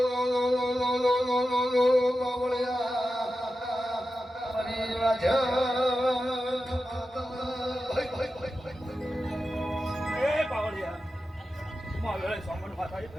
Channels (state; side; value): normal; both; correlation 0.92